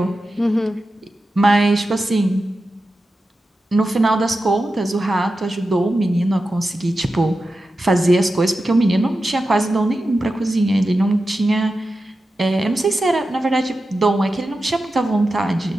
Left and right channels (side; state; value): both; normal; correlation 0.92